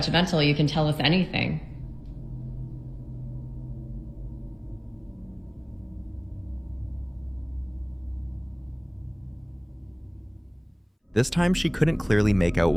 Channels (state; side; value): identical; both; correlation 1.00